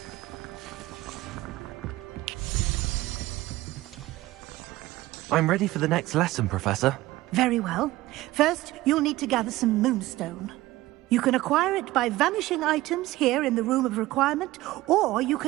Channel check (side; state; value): left; quieter; 17.6 dB